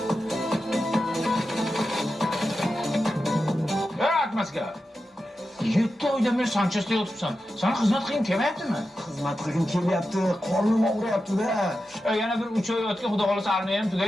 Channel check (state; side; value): normal; both; correlation 0.91